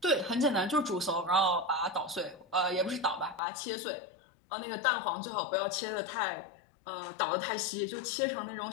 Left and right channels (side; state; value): right; drops out; at 3.4 s